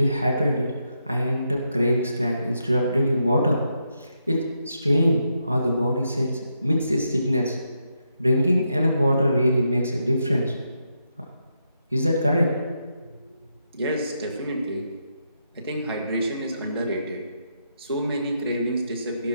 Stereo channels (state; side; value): inverted; both; correlation -0.82